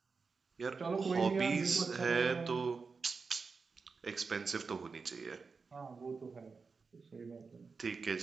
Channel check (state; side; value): quieter; left; 4.8 dB